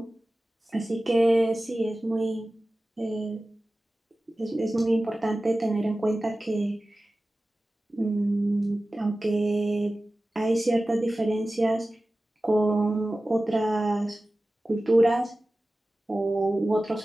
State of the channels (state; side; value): normal; both; correlation 0.96